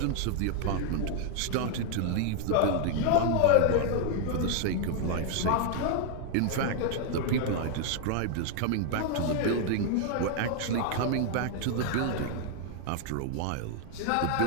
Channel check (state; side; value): different; both; correlation 0.00